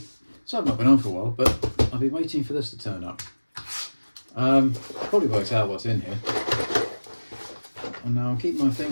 So I've not been on for a while, but I've been waiting for this to turn up. Probably works out what's in here. And now I'll keep my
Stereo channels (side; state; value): both; inverted; correlation -1.00